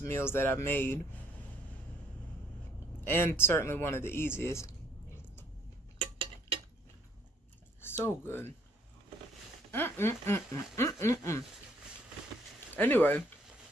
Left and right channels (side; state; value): both; normal; correlation 0.64